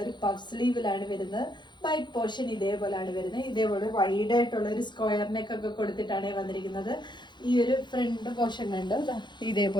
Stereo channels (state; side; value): late; right; 0.22 ms